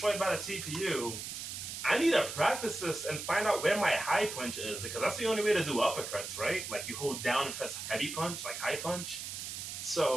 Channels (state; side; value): noise; right; hiss, 7 dB below the sound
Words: by the CPU, I need to practice this and find out where my high punch is, because that's the only way to do uppercuts, right? Like you hold down and press heavy punch, like high punch.